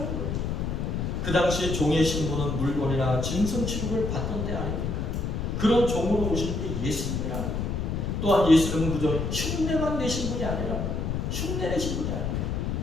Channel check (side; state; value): left; noise; rumble, 1 dB below the sound